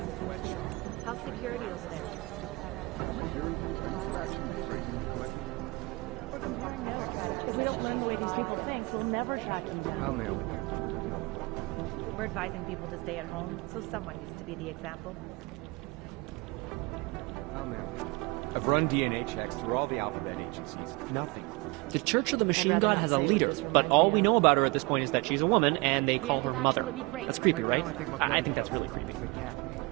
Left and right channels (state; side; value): quieter; left; 25.6 dB